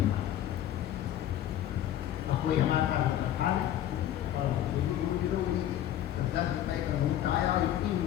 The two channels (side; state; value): right; quieter; 11.8 dB